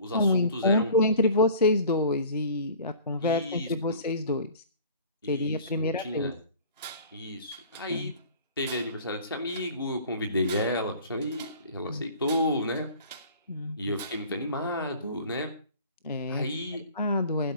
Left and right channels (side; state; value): both; inverted; correlation -0.46